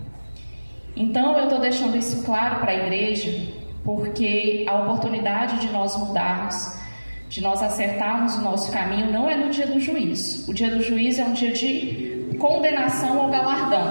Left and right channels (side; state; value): both; inverted; correlation -1.00